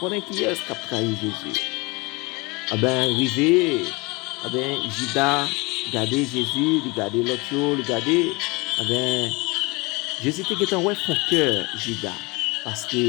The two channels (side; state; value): right; quieter; 26.0 dB